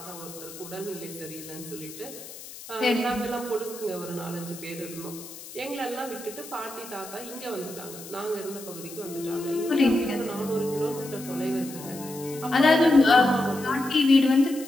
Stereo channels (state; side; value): noise; left; hiss, 14 dB below the sound